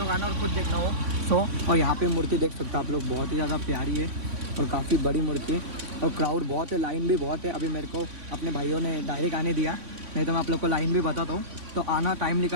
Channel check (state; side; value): late; left; 3.5 ms